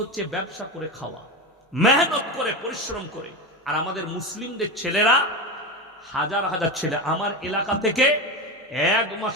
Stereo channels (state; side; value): normal; both; correlation 0.19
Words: হচ্ছে ব্যবসা করে খাওয়া, মেহনত করে, পরিশ্রম করে। আর আমাদের মুসলিমদের ছেলেরা, হাজার হাজার ছেলে আমার এলাকা থেকে 1